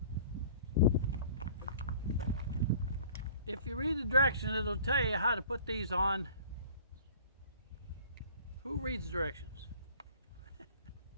If you read the directions, it'll tell you how to put these on. Who reads directions?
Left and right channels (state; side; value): inverted; both; correlation -0.48